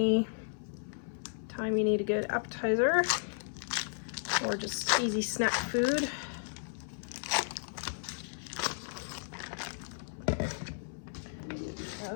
time you need a good appetizer or just easy snack food. Okay,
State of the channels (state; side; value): silent; right; 55 dB below the other